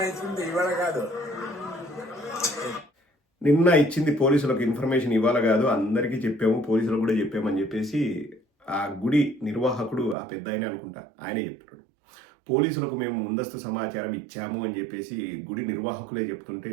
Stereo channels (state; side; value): drops out; left; at 10.2 s